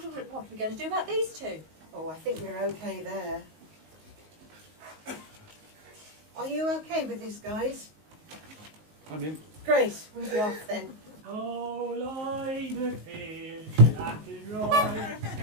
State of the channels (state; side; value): late; left; 19 ms